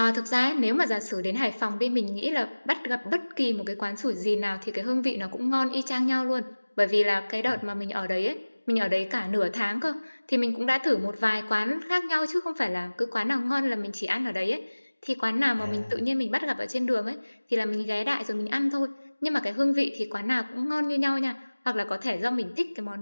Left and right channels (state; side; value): inverted; both; correlation -1.00